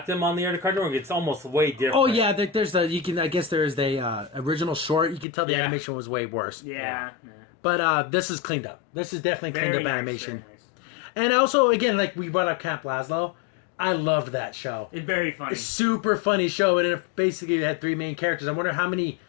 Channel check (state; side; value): drops out; right; at 5.2 s